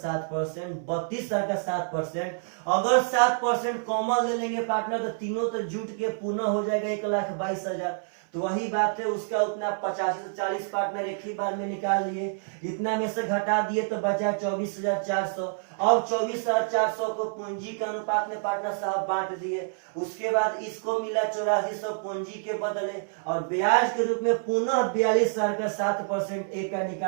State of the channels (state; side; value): silent; left; 60 dB below the other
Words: 32,000 का 7%, अगर 7% कॉमन ले लेंगे पार्टनर तो तीनों तो जुट के पुनः हो जाएगा 1,22,000। तो वही बात है, उसका उतना 85 से 40 पार्टनर एक ही बार में निकाल लिए, इतना में से घटा दिए तो बचा 24,400। अब 24,400 को पूंजी के अनुपात में पार्टनर साहब बांट दिए। उसके बाद इसको मिला 8400 पूंजी के बदले, और ब्याज के रूप में पुनः 42,000 का 7% एक का